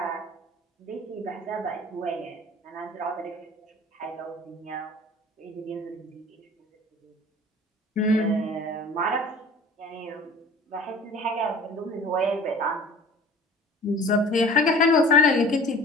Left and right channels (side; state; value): both; normal; correlation 0.44